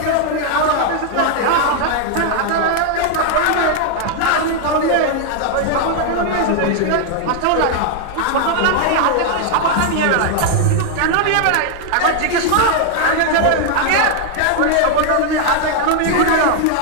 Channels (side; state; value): both; different; correlation 0.00